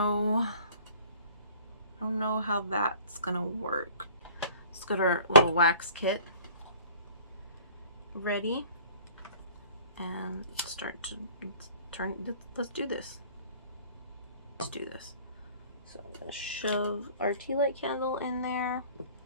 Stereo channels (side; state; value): both; inverted; correlation -0.51